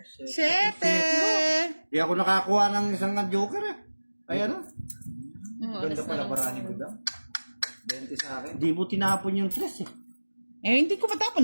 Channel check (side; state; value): both; inverted; correlation -1.00